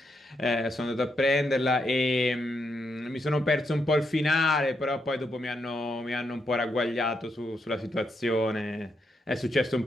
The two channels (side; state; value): both; normal; correlation 0.80